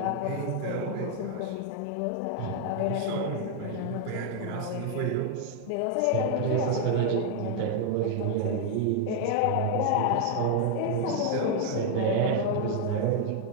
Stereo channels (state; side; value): different; both; correlation 0.00